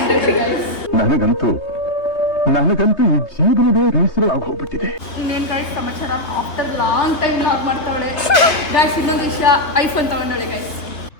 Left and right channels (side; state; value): right; late; 3.2 ms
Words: ಗೈಸ್. ನನಗಂತೂ ಈ ಜೀವನವೇ ಬೇಸರವಾಗಿ ಹೋಗ್ಬಿಟ್ಟಿದೆ. ಇನ್ನೇನು ಗೈಸ್ ಸಮಾಚಾರ? ಆಫ್ಟರ್ ಲಾಂಗ್ ಟೈಮ್ ಲಾಗ್ ಮಾಡ್ತಾವಳೆ ಗೈಸ್. ಇನ್ನೊಂದು ವಿಷಯ, ಐಫೋನ್ ತಗೊಂಡವಳೆ ಗೈಸ್.